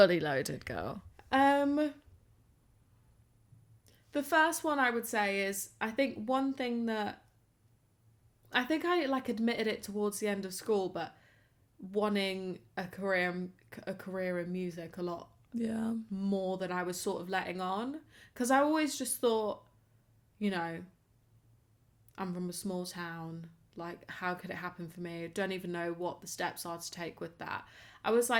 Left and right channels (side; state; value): both; identical; correlation 1.00